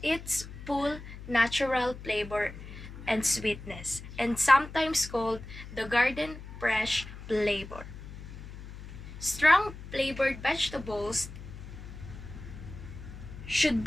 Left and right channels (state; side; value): noise; left; hum, 13 dB below the sound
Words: its full natural flavor and sweetness, and sometimes called the garden fresh flavor. Strong flavored vegetables should